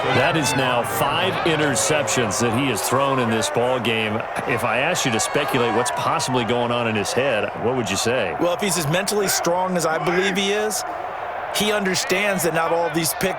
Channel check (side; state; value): both; identical; correlation 1.00